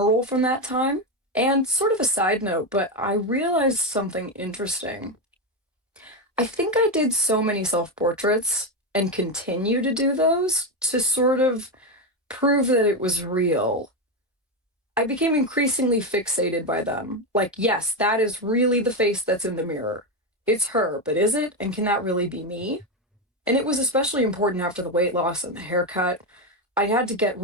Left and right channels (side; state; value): both; normal; correlation 0.11